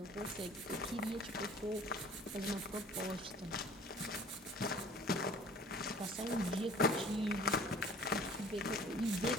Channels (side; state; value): both; normal; correlation 0.48